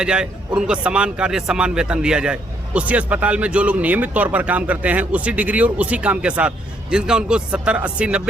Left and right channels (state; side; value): normal; both; correlation 0.71